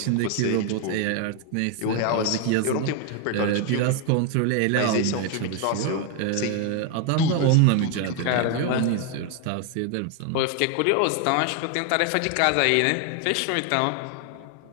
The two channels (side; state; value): both; different; correlation 0.01